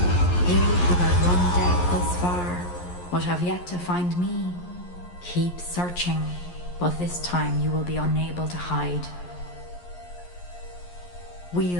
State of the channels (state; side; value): late; right; 11 ms